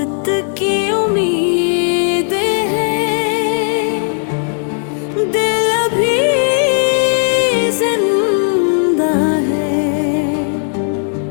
की उम्मीद है, दिल अभी जिंदा है।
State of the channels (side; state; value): right; silent; digital silence